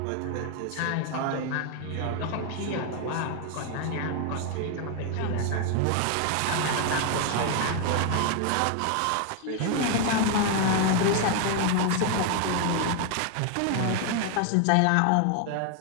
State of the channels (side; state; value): both; different; correlation 0.00